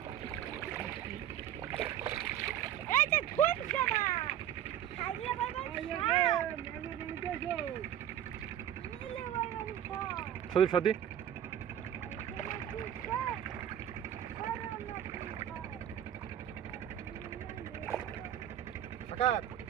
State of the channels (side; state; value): left; quieter; 10.8 dB